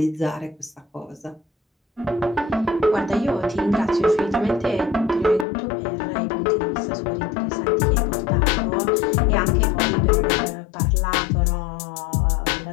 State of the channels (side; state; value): right; drops out; at 5.5 s